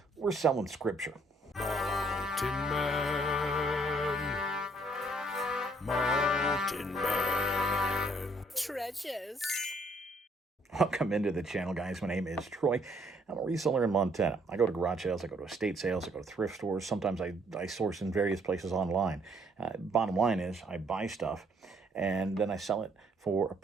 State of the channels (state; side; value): normal; both; correlation 0.66